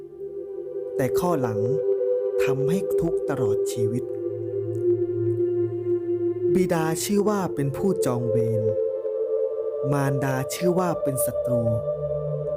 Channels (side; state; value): both; identical; correlation 1.00